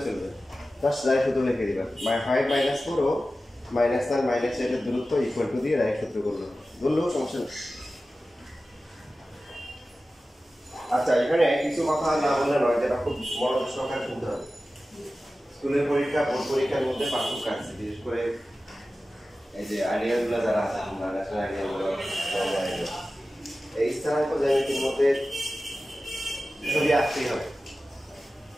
চলবে, জাস্ট ডাইরেক্ট সূত্র লিখে দিবা। 5 মাইনাস 4 ও মাইনাস 1 মাইনাস 8 এর দূরত্ব ইকুয়াল টু দিয়ে ডাইরেক্ট সূত্র করলো, বললেও সমস্যা নেই। আচ্ছা, এখানে কিছু কথা না বললে নয়, যেটা খুব মনোযোগ সহকারে শুনতে হবে। স্কুলের পরীক্ষা বোর্ড পরীক্ষার মধ্যে পার্থক্য আছে, বিশেষ করে এই যে আইডিয়ালগুলো যারা আছে, ন্যাশনাল আইডিয়ালগুলো, এই স্থানাঙ্ক জ্যামিতির মধ্যে ছবি আঁকতেই হবে।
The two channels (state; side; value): normal; both; correlation 0.95